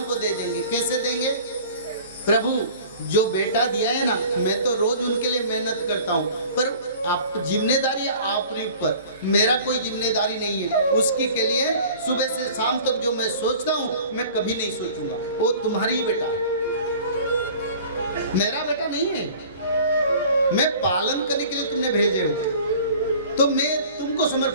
को दे देंगे। कैसे देंगे? प्रभु जो बेटा दिया है ना, मैं तो रोज उनके लिए मेहनत करता हूँ, पर आप जिम्मेदारी आपके ऊपर, मेरा कोई जिम्मेदारी नहीं है। उसकी के लिए सुबह से शाम तक जो मैं सोचता हूँ मैं कभी नहीं सोचूंगा, वो तुम्हारी ही बेटा है, मेरा बेटा नहीं है। मैं पालन करने के लिए तुमने भेजे हो, तो मैं तुमको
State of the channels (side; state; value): both; inverted; correlation -0.46